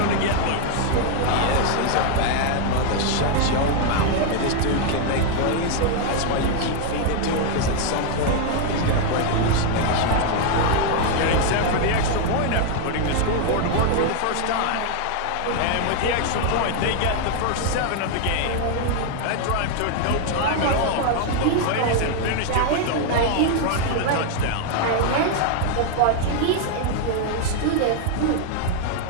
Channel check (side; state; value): both; different; correlation 0.00